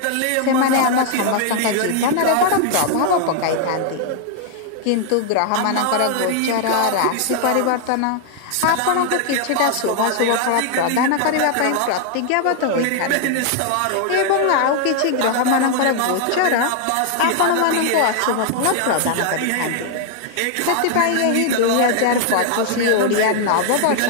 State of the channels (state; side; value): different; both; correlation 0.00